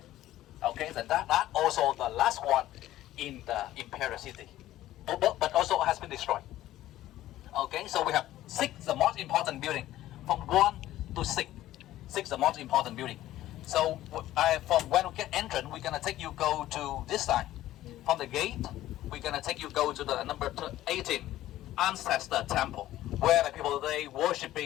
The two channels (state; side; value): quieter; right; 14.4 dB